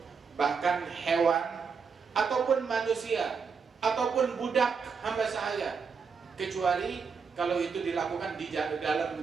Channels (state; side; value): quieter; left; 5.7 dB